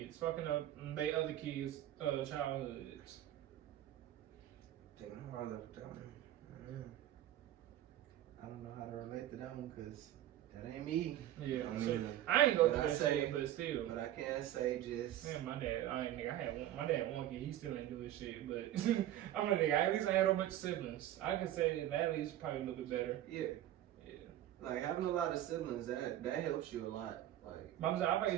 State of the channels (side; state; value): left; quieter; 12.8 dB